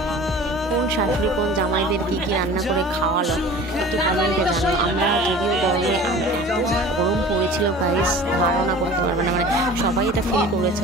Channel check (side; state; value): both; normal; correlation 0.42